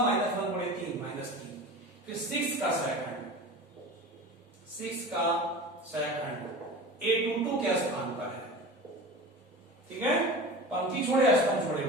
× 3 -3। फिर 6 का सहखंड a22 के स्थान पर है, ठीक है, पंक्ति छोड़े स्तंभ छोड़े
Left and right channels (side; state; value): both; normal; correlation 0.33